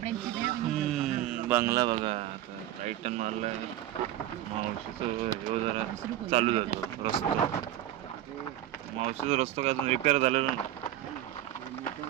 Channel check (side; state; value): left; quieter; 12.9 dB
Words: बंगला बघा टायटन मारलाय. मावशीचं जरा चालू जातो रस्ता. मावशीचा रस्ता काय अजून रिपेअर झालेला नाही.